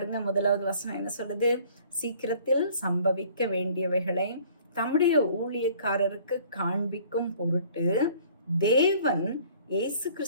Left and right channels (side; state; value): both; inverted; correlation -0.54